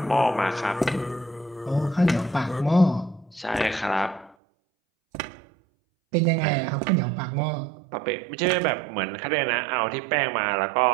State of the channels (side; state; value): left; drops out; at 4.4 s